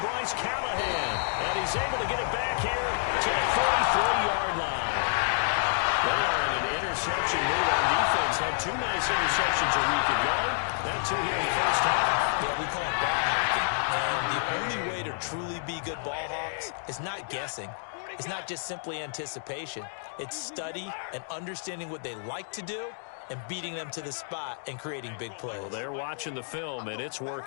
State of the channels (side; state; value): right; silent; digital silence